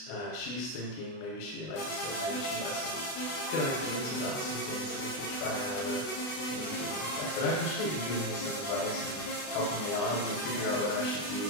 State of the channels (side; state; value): right; late; 32 ms